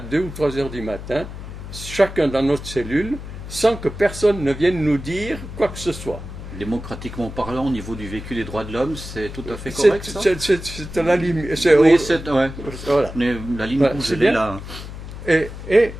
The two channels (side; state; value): left; noise; hum, 11 dB below the sound